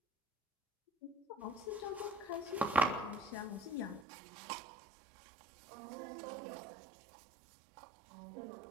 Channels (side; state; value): left; drops out; at 4.0 s